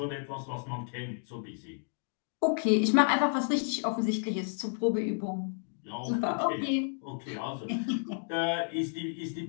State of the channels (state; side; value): silent; right; 57 dB below the other